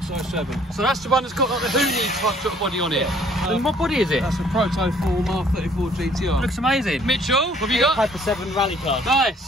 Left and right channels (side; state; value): both; normal; correlation 0.60